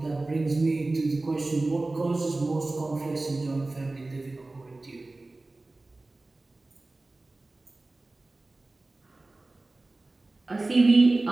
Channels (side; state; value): left; quieter; 3.1 dB